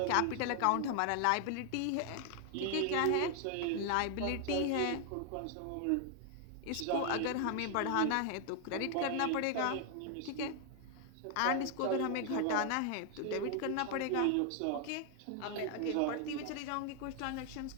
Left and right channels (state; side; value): different; both; correlation 0.00